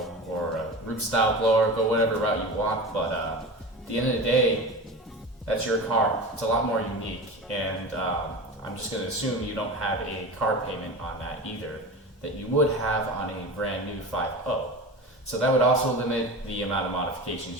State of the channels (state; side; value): normal; both; correlation 0.30